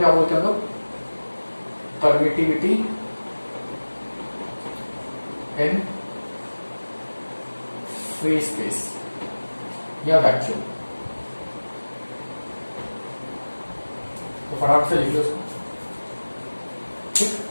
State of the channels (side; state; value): both; inverted; correlation -1.00